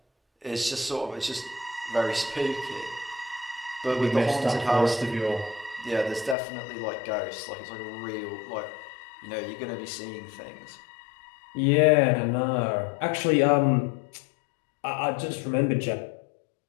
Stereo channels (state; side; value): drops out; right; at 6.4 s